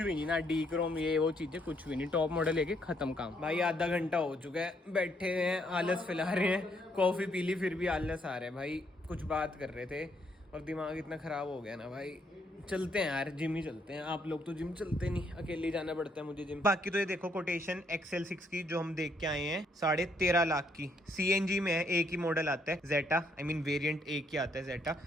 नहीं ना, डी क्रोम ये वो चीजें कुछ भी नहीं। टॉप मॉडल लेके खत्म काम। भाई आधा घंटा हो चुका है, बैठे हुए हैं, आलस फैला रहे हैं। कॉफी पी ली फिर भी आलस आ रहा है भाई। कुछ बात कर रहे थे और दिमाग इतना खराब हो गया ना भाई। चलते हैं यार, जिम ही चलते हैं। आप लोग तो जिम चलते नहीं, अकेले ही जाना पड़ता है मुझे जिम। बाकी तो ये देखो कोटेशन XL6 की जो हम देख के आए हैं 13.5 लाख की। CNG में है, एक ही मॉडल आता है जेटा, आई मीन वेरिएंट एक ही आता है जेटा।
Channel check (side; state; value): both; normal; correlation 0.72